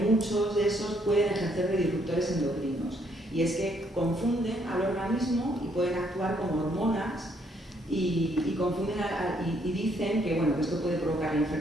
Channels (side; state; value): both; normal; correlation 0.70